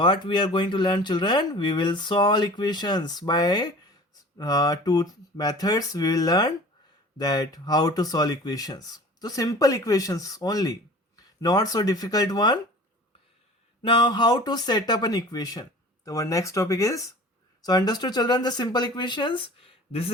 we are going to learn, children, we will solve equations by two methods. We will learn that how to solve equations. So simple equations only, not so difficult one. Now how to set up an equation. So our next topic is, so understood children, the simple equations. This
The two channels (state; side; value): normal; both; correlation 0.42